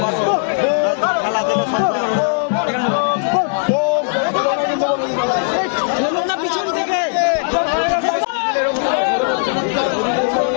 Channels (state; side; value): silent; right; digital silence